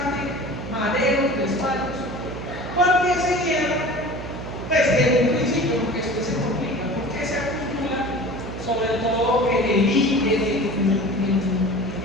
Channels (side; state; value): right; noise; hum, 9 dB below the sound